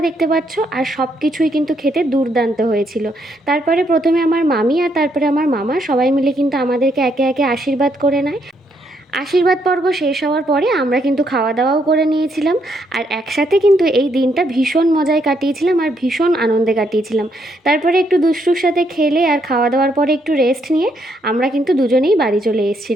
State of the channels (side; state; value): both; normal; correlation 0.74